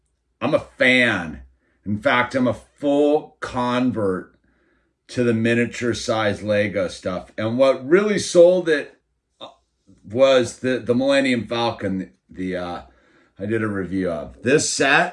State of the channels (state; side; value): identical; both; correlation 1.00